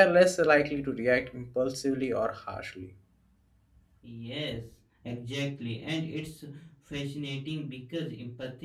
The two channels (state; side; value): identical; both; correlation 1.00